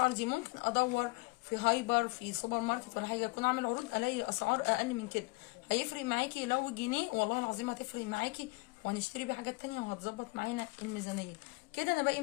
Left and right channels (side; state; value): right; quieter; 25.5 dB